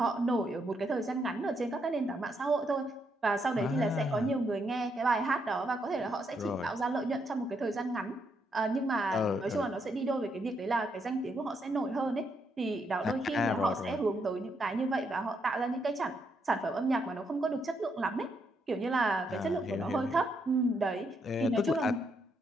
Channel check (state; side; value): normal; both; correlation 0.77